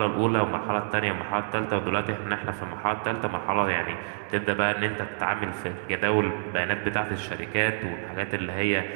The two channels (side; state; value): left; silent; 60 dB below the other